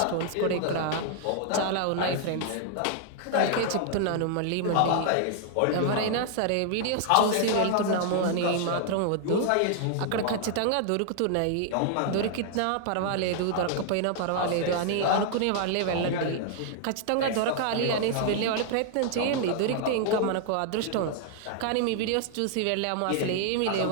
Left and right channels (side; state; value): both; different; correlation 0.00